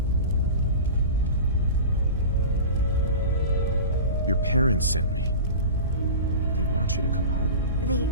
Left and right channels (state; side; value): inverted; both; correlation -0.32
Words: Your parents sent me. They want you to come home. They